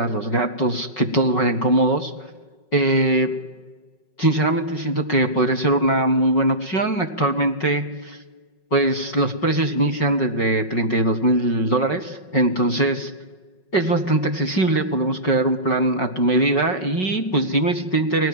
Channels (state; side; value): late; right; 5.4 ms